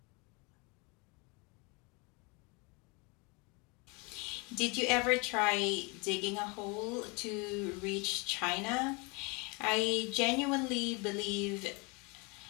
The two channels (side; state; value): right; quieter; 29.6 dB